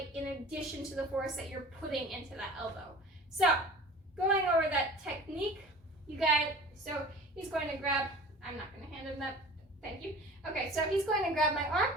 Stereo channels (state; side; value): normal; both; correlation 0.42